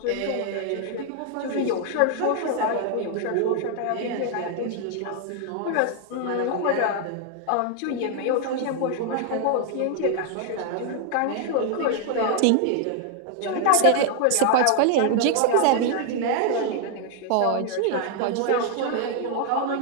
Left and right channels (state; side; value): different; both; correlation 0.00